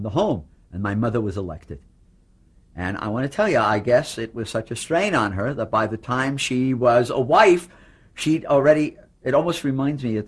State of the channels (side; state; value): both; identical; correlation 1.00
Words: the home, and my mother was elected. And I want to tell you, I guess it was such a strain on her that by the time she was a wife, she'd already, it almost reminds me,